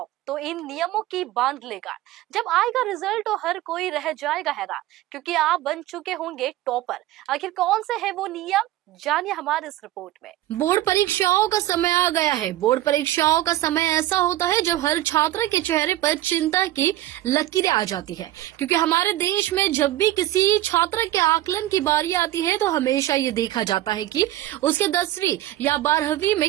तो इन नियमों की बांध लेगा। जब आएगा रिजल्ट तो हर कोई रह जाएगा हैरान, क्योंकि आप बन चुके होंगे टॉपर। आखिर कौन से है वो नियम, जानिए हमारे इस रिपोर्ट में। बोर्ड परीक्षाओं का समय आ गया है। बोर्ड परीक्षाओं का समय ऐसा होता है जब हर छात्र के चेहरे पर चिंता की लकीरें आ जाती है, क्योंकि हमारे देश में जब भी किसी छात्र के आकलन की बारी आती है तो हमेशा ये देखा जाता है कि उसके 10वीं या 12वीं में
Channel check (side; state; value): left; quieter; 14.8 dB